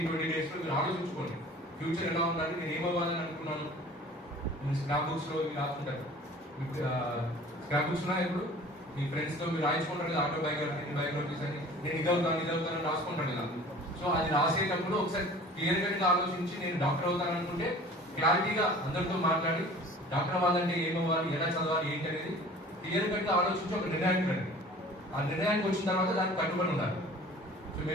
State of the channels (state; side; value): normal; both; correlation 0.45